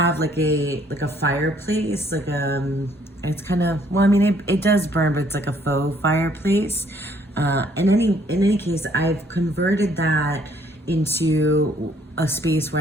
like a fireplace, it's kind of, well, I mean, it does burn, but it's like a faux fireplace. In any case, I've converted that into a space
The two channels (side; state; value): both; normal; correlation 0.64